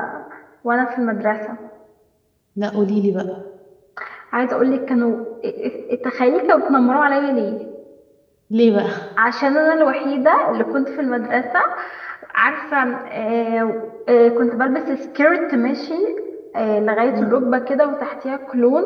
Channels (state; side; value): identical; both; correlation 1.00